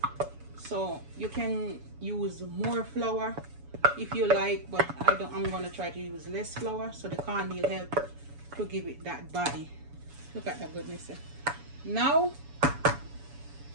so you can use more flour if you like, but I'm gonna try to use less flour, so the cornmeal help to give it that body. Look at that goodness here. Now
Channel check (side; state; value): left; late; 7.1 ms